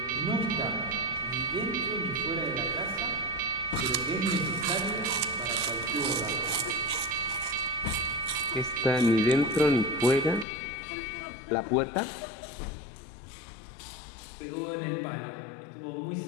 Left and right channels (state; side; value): drops out; right; at 10.5 s